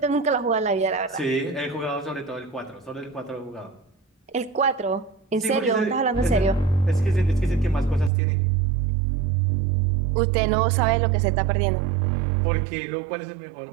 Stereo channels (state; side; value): drops out; left; at 8.1 s